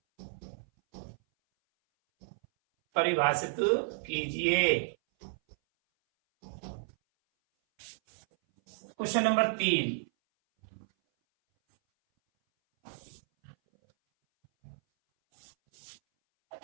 परिभाषित कीजिए। क्वेश्चन नंबर 3,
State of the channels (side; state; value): left; silent; 56 dB below the other